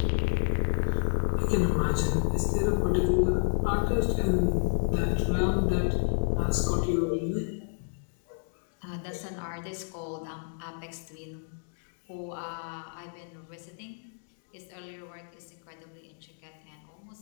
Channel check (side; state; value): right; silent; digital silence